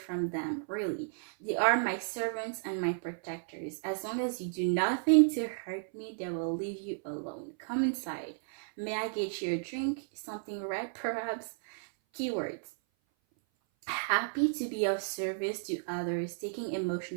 them, really. They are my servants and my protectors. As long as you do nothing to hurt me, they will leave you alone. Come inside. May I get you a drink? Something red, perhaps? Keywords. Happy to be of service to others, taking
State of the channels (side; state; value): left; silent; 56 dB below the other